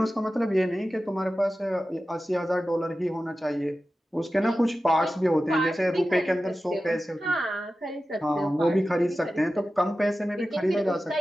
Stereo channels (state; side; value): normal; both; correlation 0.94